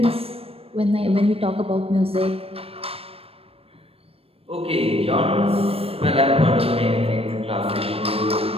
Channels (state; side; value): late; left; 0.28 ms